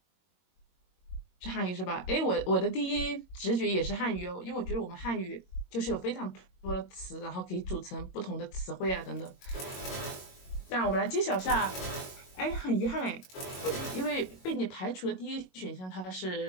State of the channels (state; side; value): late; right; 22 ms